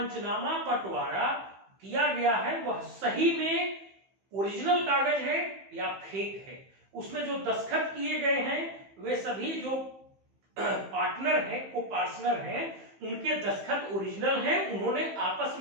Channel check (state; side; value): late; left; 15 ms